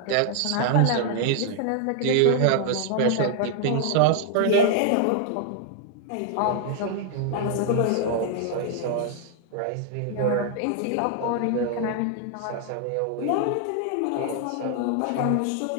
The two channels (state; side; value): different; both; correlation 0.00